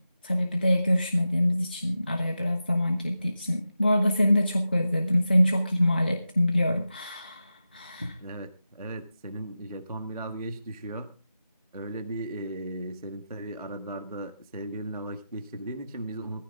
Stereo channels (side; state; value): both; inverted; correlation -0.92